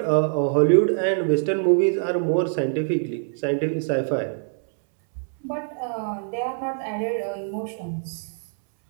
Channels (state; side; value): silent; left; 63 dB below the other